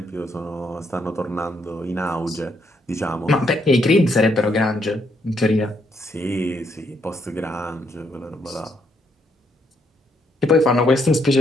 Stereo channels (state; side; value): normal; both; correlation 0.74